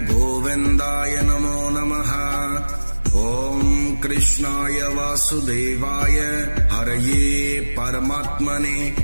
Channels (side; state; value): both; inverted; correlation -1.00